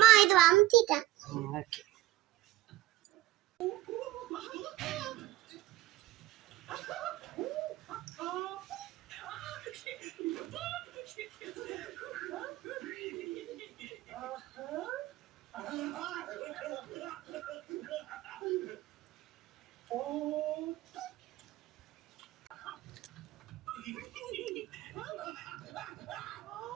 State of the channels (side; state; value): left; quieter; 15.6 dB